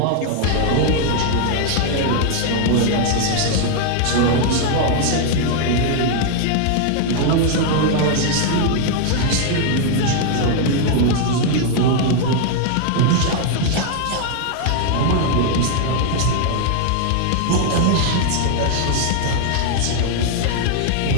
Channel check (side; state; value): both; different; correlation 0.00